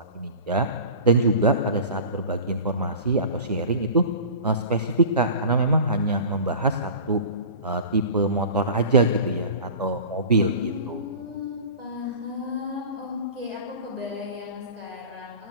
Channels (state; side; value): inverted; both; correlation -0.37